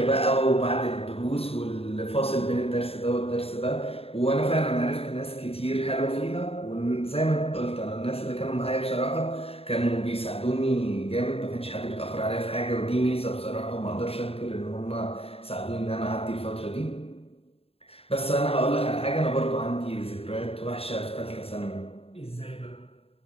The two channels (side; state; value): right; late; 0.28 ms